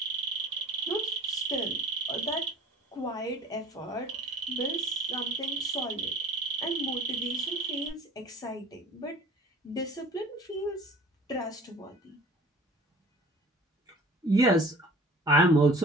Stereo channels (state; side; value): normal; both; correlation 0.47